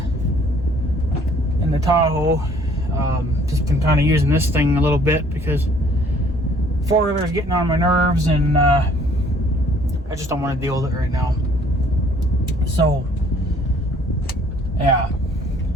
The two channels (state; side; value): normal; both; correlation 0.58